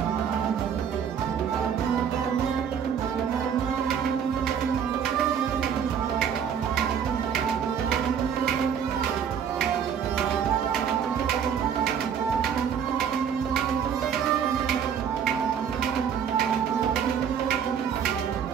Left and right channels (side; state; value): left; quieter; 7.9 dB